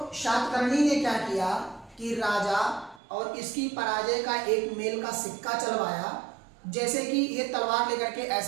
शातकर्णी ने क्या किया कि राजा और इसकी पराजय का एक मेल का सिक्का चलवाया। जैसे कि ये तलवार लेकर के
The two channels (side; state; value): left; drops out; at 3.0 s